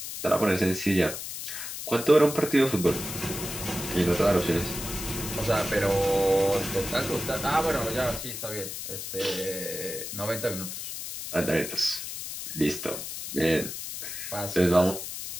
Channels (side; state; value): left; noise; hiss, 7 dB below the sound